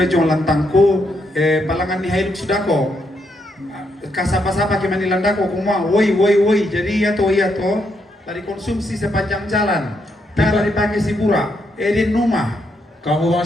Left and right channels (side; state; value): both; normal; correlation 0.78